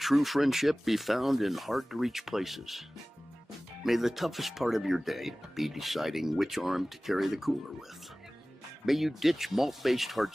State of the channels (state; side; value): normal; both; correlation 0.98